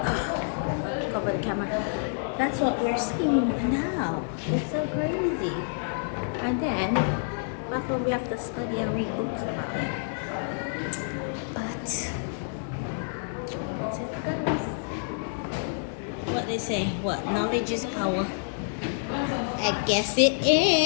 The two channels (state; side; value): silent; right; digital silence